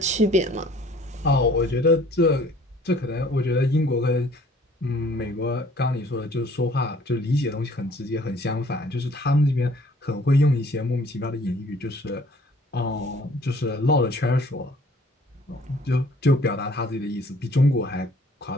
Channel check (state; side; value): normal; both; correlation 0.56